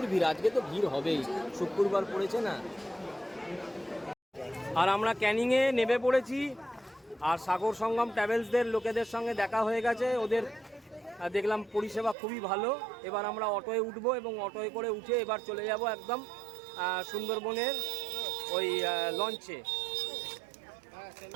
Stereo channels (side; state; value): left; drops out; at 12.2 s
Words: ভিড়, আজকে তো ভিড় হবেই, শুক্রবার পড়েছে না। আর আমরা ক্যানিংয়ে নেমে পড়েছি। আর সাগর সঙ্গম ট্রাভেলসদের লোকেদের সঙ্গে দেখা হয়ে গেছে। ওদের দেখলাম পরিষেবা খুবই ভালো। এবার আমরা অটোয় উঠবো এবং অটোয় করে উঠে এবার চলে যাব একদম সুন্দরবনের ওই লঞ্চে।